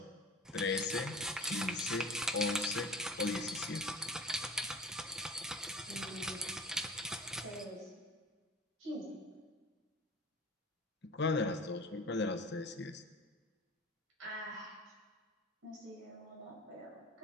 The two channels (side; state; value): both; normal; correlation 0.39